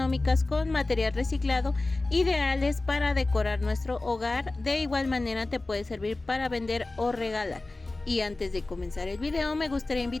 con material reciclado, ideales para decorar nuestro hogar. De igual manera te puede servir para vender o regalar. Y antes de comenzar el video me gustaría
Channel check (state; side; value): quieter; right; 3.1 dB